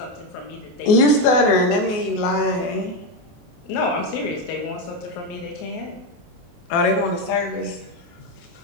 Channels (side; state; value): right; late; 24 ms